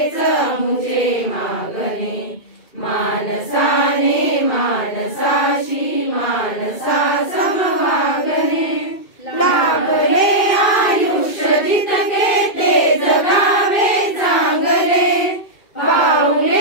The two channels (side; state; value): right; late; 2.3 ms